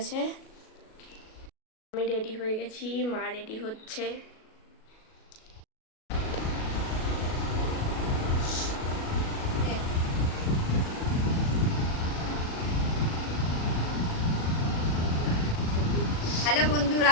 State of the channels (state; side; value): late; right; 37 ms